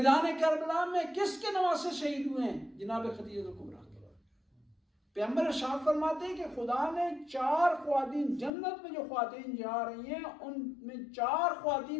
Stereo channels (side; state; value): right; drops out; at 8.5 s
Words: کربلا میں کس کے نواسے شہید ہوئے ہیں؟ جناب خدیجہ کبریٰ. پیغمبر ارشاد فرماتے ہیں کہ خدا نے 4 خواتین جنت میں جو خواتین جا رہی ہیں ان میں 4